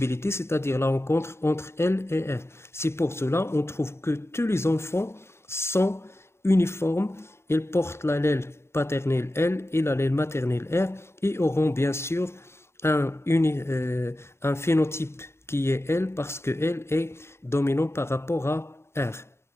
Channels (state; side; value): late; right; 0.12 ms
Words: c'est-à-dire la rencontre entre L et R. C'est pour cela qu'on trouve que tous les enfants sont uniformes. Ils portent l'allèle paternel L et l'allèle maternel R et auront bien sûr un phénotype qui est L parce que L est dominant par rapport à R.